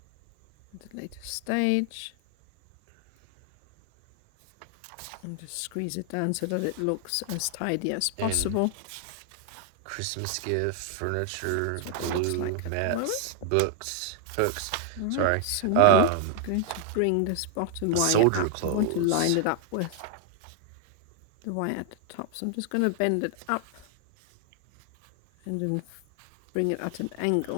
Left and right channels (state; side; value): different; both; correlation 0.00